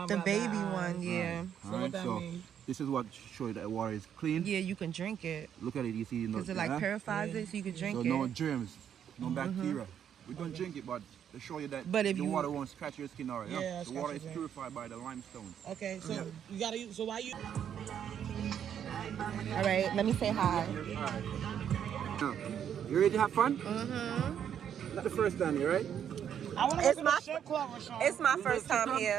The baby one, yeah. Right. So what that means? This is what shows that water is clean. Yeah, you can drink it. Look at it, you see. Because it like purifies it, so you can drink so it. no germs, no bacteria. We don't drink it, but to show you that But if the you- water won't scratch your skin already. Yeah, The water is purified by the limestone. Okay, so you gotta use, so why you? All right, let me say hi. Now, you ready to have fun? Not the first time here, right? I wanna go to the strip club, Rashawn. It's my first time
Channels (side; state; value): left; quieter; 9.0 dB